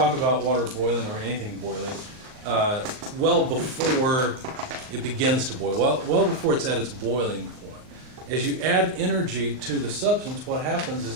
about water boiling or anything boiling well before it begins to boil, well before it's at its boiling point. As you add energy to the substance, what happens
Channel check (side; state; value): left; late; 39 ms